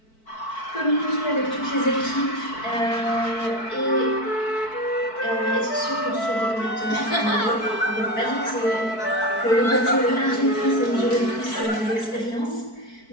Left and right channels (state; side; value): late; right; 4.6 ms